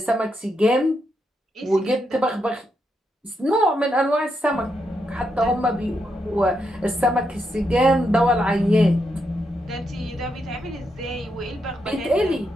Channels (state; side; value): normal; both; correlation 0.82